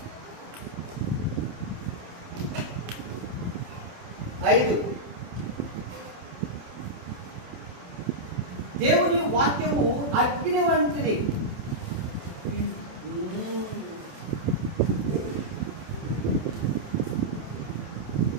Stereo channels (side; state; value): left; late; 27 ms